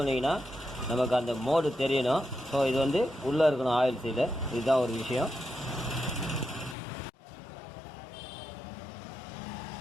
நமக்கு அந்த மோடு தெரியணும். ஸோ இது வந்து உள்ளே இருக்கணும் ஆயில் சீலு. இதுதான் ஒரு விஷயம்.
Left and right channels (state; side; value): drops out; right; at 6.8 s